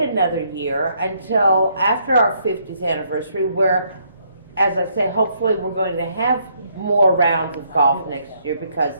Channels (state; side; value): inverted; both; correlation -0.71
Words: year until after our 50th anniversary, where, as I say, hopefully we're going to have more rounds of golf next year